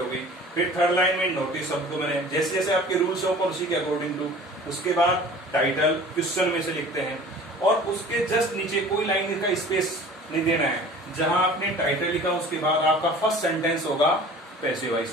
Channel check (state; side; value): normal; both; correlation 0.44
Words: गई। फिर थर्ड लाइन में नोटिस शब्द को मैंने जैसे जैसे आपके रूल्स ऑफ पॉलिसी के अकॉर्डिंग टू। उसके बाद टाइटल क्वेश्चन में से लिखते हैं और उसके जस्ट नीचे कोई लाइन का स्पेस नहीं देना है। जहां आपने टाइटल लिखा उसके बाद आपका फर्स्ट सेंटेंस होगा पैसिव वॉइस